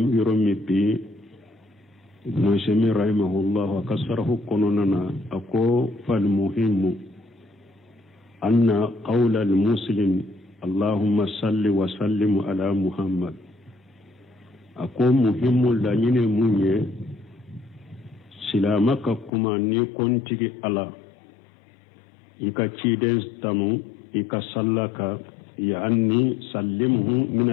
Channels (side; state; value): right; drops out; at 19.3 s